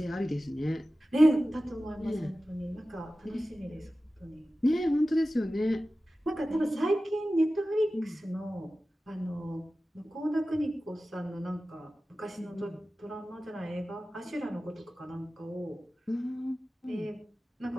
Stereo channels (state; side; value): normal; both; correlation 0.95